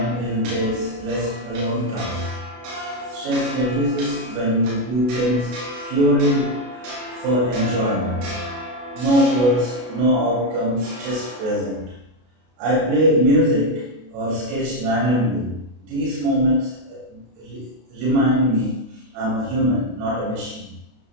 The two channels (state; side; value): late; left; 32 ms